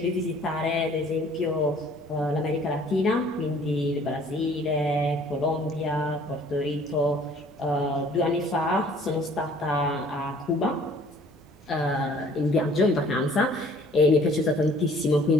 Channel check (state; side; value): normal; both; correlation 0.55